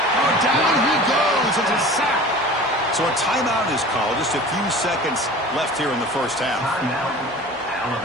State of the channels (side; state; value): both; normal; correlation 0.40